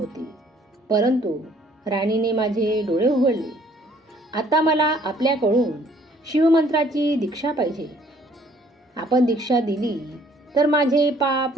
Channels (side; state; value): both; normal; correlation 0.60